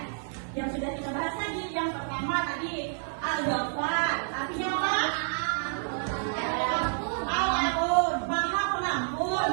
Yang sudah kita bahas tadi, yang pertama tadi Al-Ghaffar, artinya apa? Al-Ghafur, Maha Pengampun.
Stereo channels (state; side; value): silent; left; 58 dB below the other